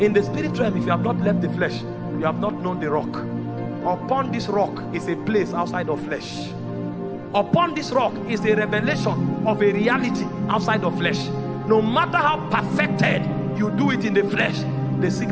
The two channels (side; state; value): both; identical; correlation 1.00